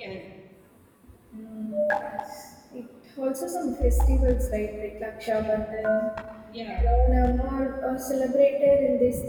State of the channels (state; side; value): identical; both; correlation 1.00